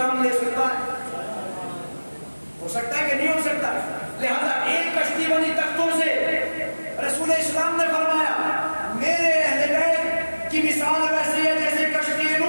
لے سکتا ہے. ہو سکتا ہے کہ نہیں ہو سکتا. لہذا ایک کشتی بنی تختوں سے. رسول اسلام نے فرمایا میرے اہل بیت کی مثال ویسی ہے جیسے کشتی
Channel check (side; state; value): both; inverted; correlation -1.00